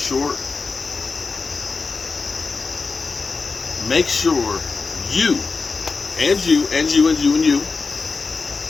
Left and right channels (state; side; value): quieter; right; 4.4 dB